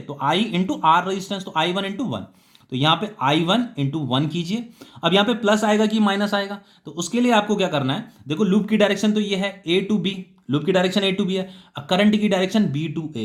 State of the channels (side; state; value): both; identical; correlation 1.00